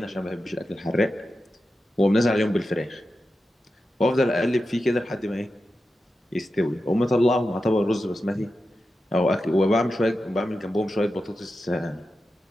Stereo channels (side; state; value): both; normal; correlation 0.91